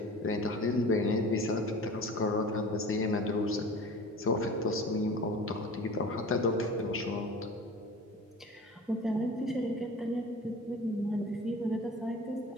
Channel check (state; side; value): normal; both; correlation 0.39